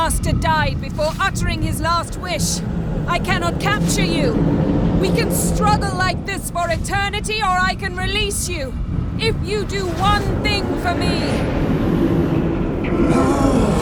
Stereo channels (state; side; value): identical; both; correlation 1.00